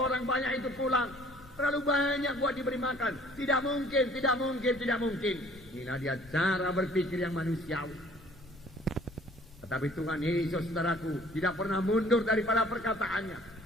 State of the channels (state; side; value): noise; left; rumble, 21 dB below the sound